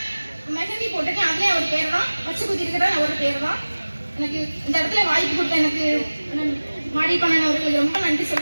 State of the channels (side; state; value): both; inverted; correlation -1.00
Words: மெஹந்தி போட்டுட்டு அதுலேயே ஒரு பேர் தான் வச்சு குத்திருக்கிற ஒரு பேர் தான். எனக்கு இந்த இடத்துல வாய்ப்பு கொடுத்த எனக்கு மாடி பண்ணன் அவர்களுக்கு ரொம்ப நன்றி